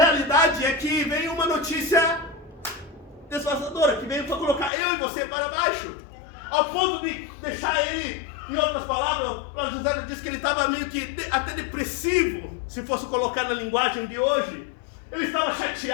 é que veio uma notícia devastadora, que veio para colocar eu e você para baixo, ao ponto de deixar ele, em outras palavras, o José diz que ele estava meio que até depressivo, se fosse colocar na linguagem de hoje. Ele estava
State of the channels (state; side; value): drops out; right; at 4.7 s